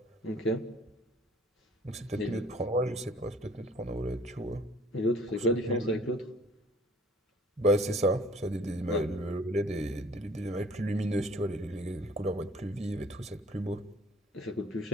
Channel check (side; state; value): both; normal; correlation 0.53